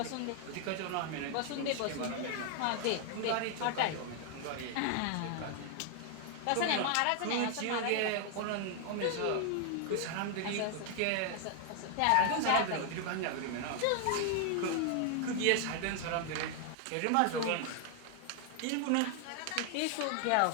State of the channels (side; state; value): both; different; correlation 0.00